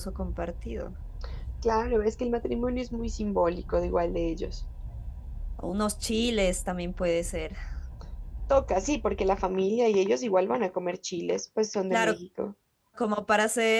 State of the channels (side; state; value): both; identical; correlation 1.00